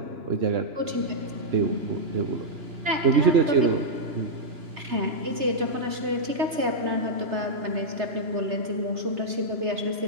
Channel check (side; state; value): left; late; 3.3 ms